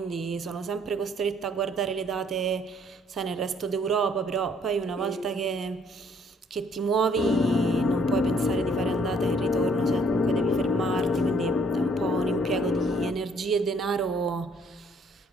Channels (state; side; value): normal; both; correlation 0.63